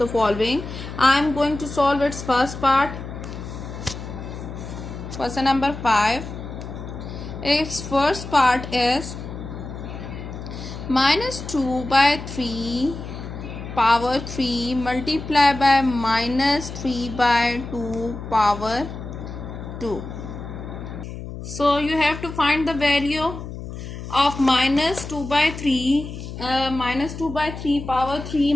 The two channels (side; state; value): left; noise; hum, 10 dB below the sound